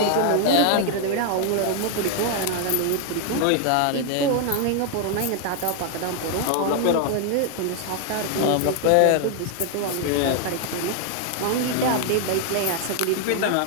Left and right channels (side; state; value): both; different; correlation 0.00